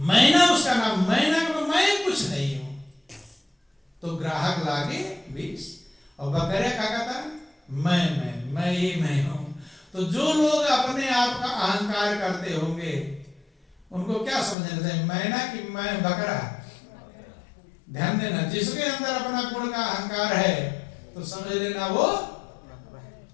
उसका नाम, मैना को मैं कुछ नहीं हूं। तो ग्राहक लागे 20 और बकरे का कहता मैं ये मैं हूं। तो जो लोग अपने आप का अहंकार करते होंगे उनको क्या समझना चाहिए, मैना कि मैं बकरा? ध्यान देना, जिसके अंदर अपना गुण का अहंकार है तो समझ लेना वो,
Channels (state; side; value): drops out; right; at 14.6 s